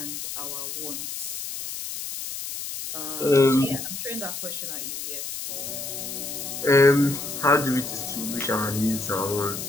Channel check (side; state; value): left; noise; hiss, 6 dB below the sound